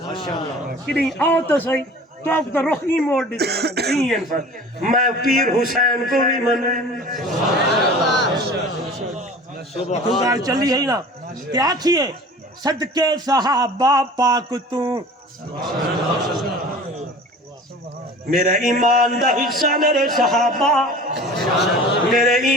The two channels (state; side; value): normal; both; correlation 0.42